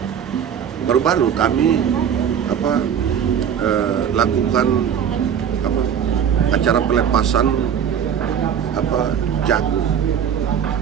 Baru-baru kami lakukan acara pelepasan jagung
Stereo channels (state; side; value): quieter; left; 8.4 dB